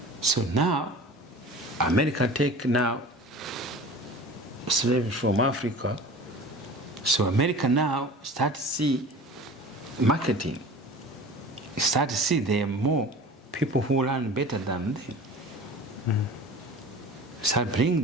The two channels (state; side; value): normal; both; correlation 0.39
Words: So now, America take now slaves from Africa. So America now start to see marketing. Start to see there are more people who learn better than them. Start bring